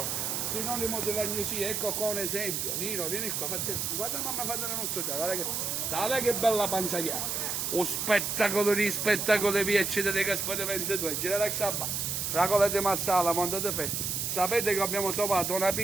sinonimo dell'agnosia, ecco qua un esempio. Nino, vieni qua, guarda mamma fa della nostra già, guarda che bella panza che ha. Lo spettacolo di spettacolo di Piacere dei Gaspari 22, gira la sabba, fragole di Massala, Monte de Fe. Sapete che abbiamo trovato una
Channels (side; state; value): right; noise; hiss, 1 dB below the sound